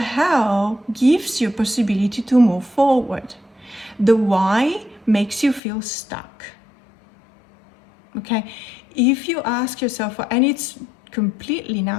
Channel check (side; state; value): right; drops out; at 5.6 s